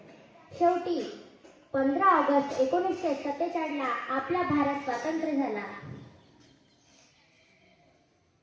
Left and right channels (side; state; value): both; identical; correlation 1.00